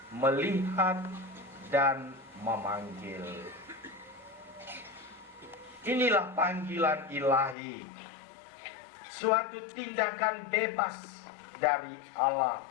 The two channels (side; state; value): right; drops out; at 7.6 s